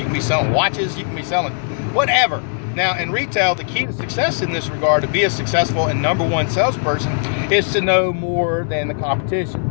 can be selling watches, you can be selling whatever. Now, in retail, the key to success in this regard, to be a successful and #1 salesperson, is to know more than the competition.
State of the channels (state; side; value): silent; right; digital silence